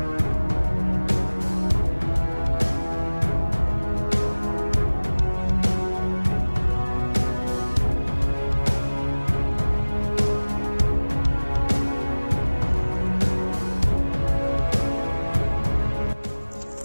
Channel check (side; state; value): both; inverted; correlation -1.00